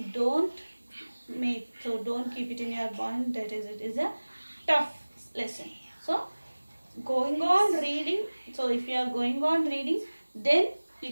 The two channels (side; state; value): both; inverted; correlation -1.00